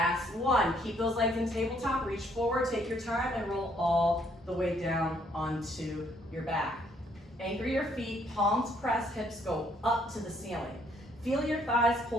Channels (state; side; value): normal; both; correlation 0.67